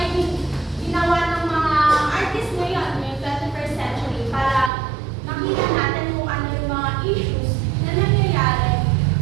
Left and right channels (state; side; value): drops out; left; at 4.7 s